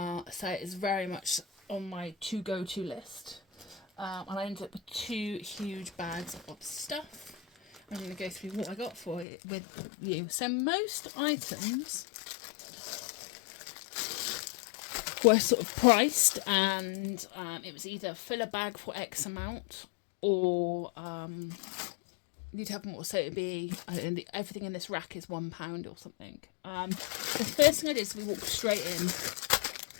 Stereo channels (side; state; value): right; drops out; at 9.2 s